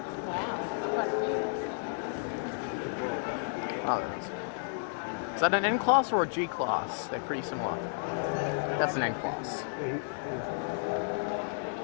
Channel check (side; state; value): right; silent; 56 dB below the other